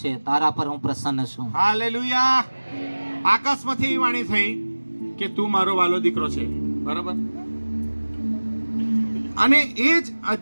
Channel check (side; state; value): both; inverted; correlation -1.00